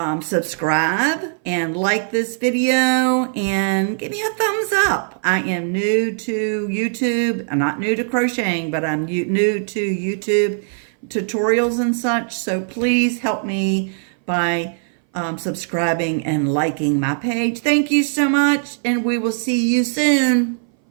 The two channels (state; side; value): silent; left; 61 dB below the other